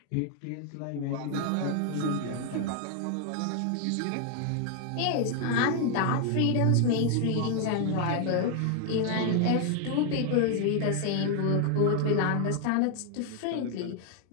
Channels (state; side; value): different; both; correlation 0.00